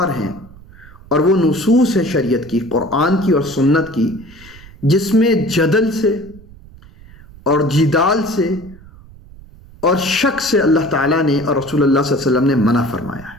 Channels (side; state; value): right; noise; rumble, 21 dB below the sound